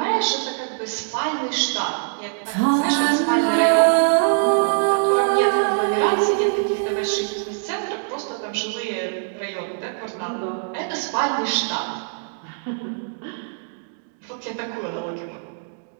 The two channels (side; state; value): left; silent; digital silence